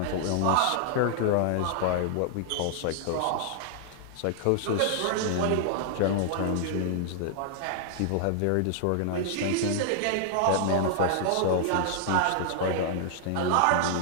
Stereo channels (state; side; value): different; both; correlation -0.01